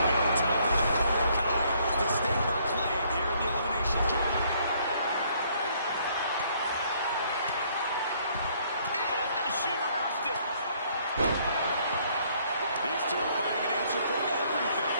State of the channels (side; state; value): both; inverted; correlation -0.65